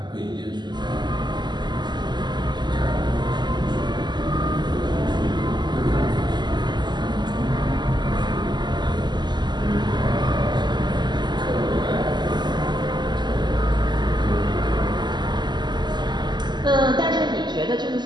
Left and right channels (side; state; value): left; late; 0.21 ms